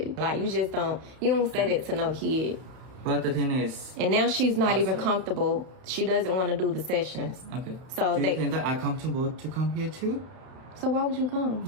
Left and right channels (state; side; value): late; left; 31 ms